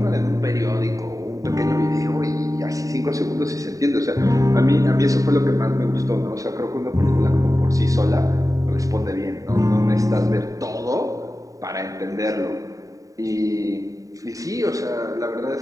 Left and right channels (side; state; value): left; late; 0.16 ms